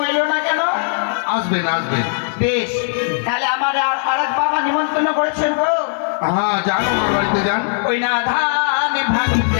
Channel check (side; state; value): right; silent; digital silence